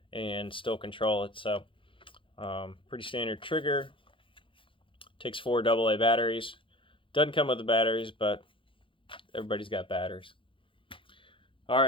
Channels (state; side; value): late; right; 0.25 ms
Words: and still control it. So pretty standard trigger. Takes 4 AA batteries. Doesn't come with the batteries, but everybody's got batteries. All